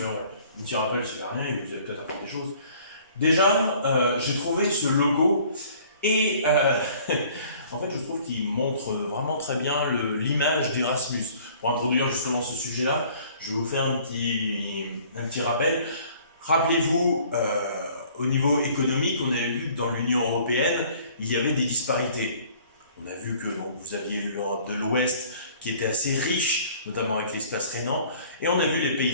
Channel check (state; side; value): inverted; both; correlation -0.54